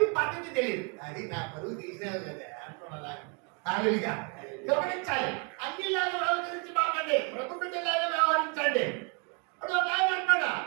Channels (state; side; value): quieter; left; 35.4 dB